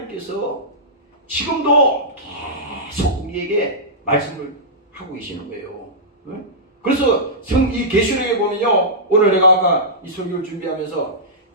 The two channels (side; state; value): both; normal; correlation -0.15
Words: 지금도 계속 우리에게 말씀을 하고 계시는 거예요. 그래서 이 계시록에 보면요 오늘 내가 아까 이 설교를 준비하면서